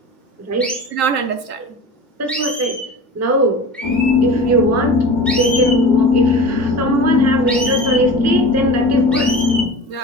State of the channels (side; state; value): both; normal; correlation 0.35